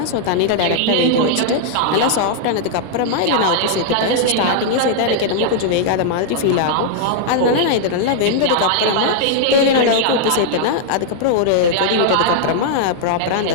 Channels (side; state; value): both; different; correlation -0.01